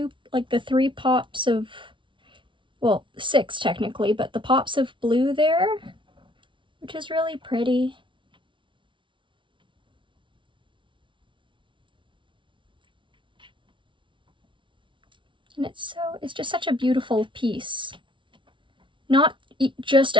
the 3 pops of, well, 6 technically, but the pops of blue there, which is really pretty. And it's just such a beautiful piece. Not just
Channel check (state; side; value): late; left; 0.24 ms